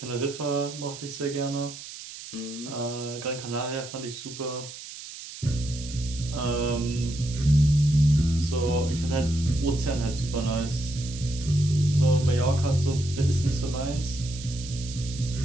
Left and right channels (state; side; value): noise; right; hiss, 13 dB below the sound